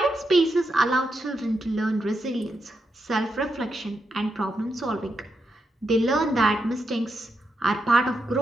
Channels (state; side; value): normal; both; correlation 0.84